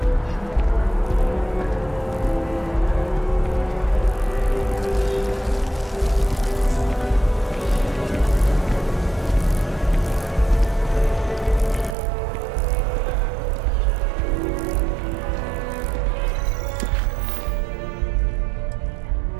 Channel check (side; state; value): left; drops out; at 12.0 s